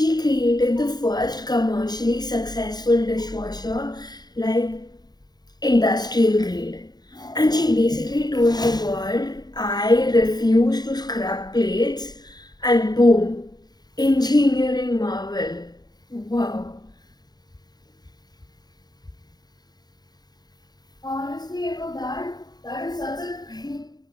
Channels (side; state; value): right; late; 0.20 ms